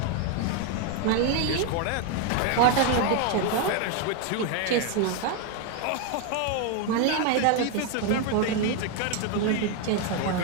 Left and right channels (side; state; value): both; different; correlation 0.01